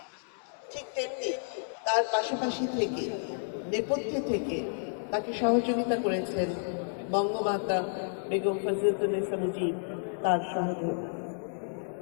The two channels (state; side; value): silent; right; digital silence